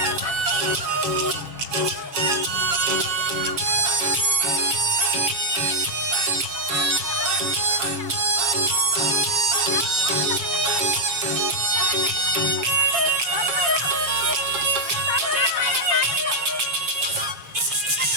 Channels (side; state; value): left; late; 7.3 ms